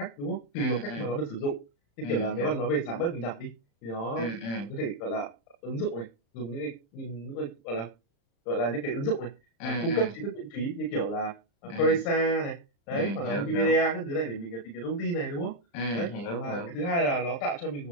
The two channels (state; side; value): late; right; 35 ms